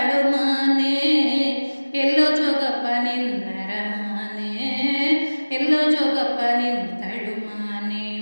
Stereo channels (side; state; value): both; inverted; correlation -1.00